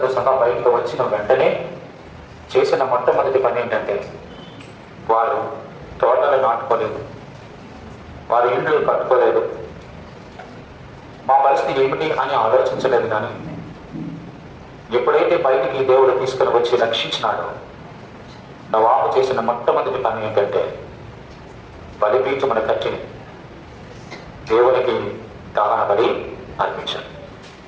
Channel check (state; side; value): identical; both; correlation 1.00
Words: సహా బయటకు వచ్చిన వెంటనే చేసిన మొట్టమొదటి పని ఏంటంటే, వారు తోటలు నాటుకోలేదు, వారి ఇళ్ళు కట్టుకోలేదు, మా పరిస్థితి ఏమిటి అని ఆలోచించలేదు. కానీ ఎప్పుడైతే బయటికి దేవుడు తీసుకుని వచ్చి రక్షించినాడో, నోవాహు చేసిన మొట్టమొదటి పని ఏంటంటే బలిపీఠమును కట్టి దేవునికి దహన బలి అర్పించాడు.